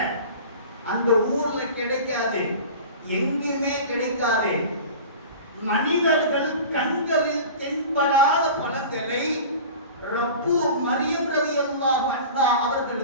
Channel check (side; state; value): both; inverted; correlation -0.37